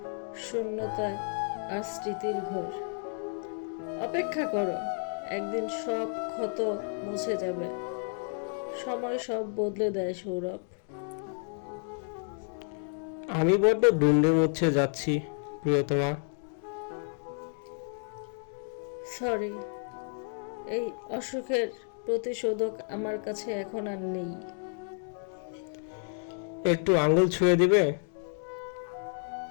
শূন্যতা আর স্মৃতির ঘর। অপেক্ষা করো, একদিন সব ক্ষত মুছে যাবে। সময় সব বদলে দেয় সৌরভ। আমি বড্ড দুন্ডে মুচ্ছে যাচ্ছি প্রিয়তমা। সরি, এই অসুখের প্রতিশোধক আমার কাছে এখন আর নেই। একটু আঙুল ছুঁয়ে দিবে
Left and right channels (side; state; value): right; silent; 57 dB below the other